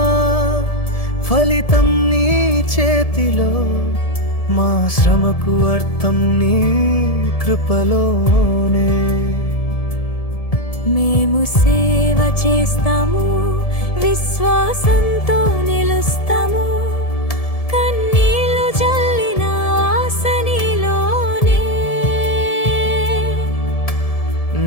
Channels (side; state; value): right; late; 1.7 ms